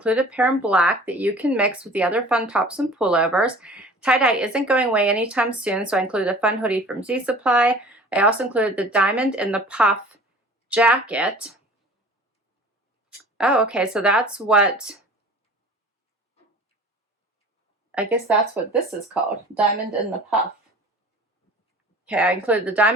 a pair in black that you can mix with the other fun tops and pullovers. Tie-dye isn't going away anytime soon, so I included a fun hoodie from Z Supply. I also included the diamond in the puff jacket. Oh, okay, so that's what, I guess that's what this is called, diamond in the puff. Okay, I included the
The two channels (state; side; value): normal; both; correlation 0.44